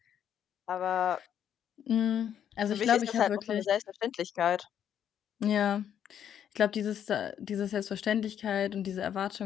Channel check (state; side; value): quieter; right; 9.4 dB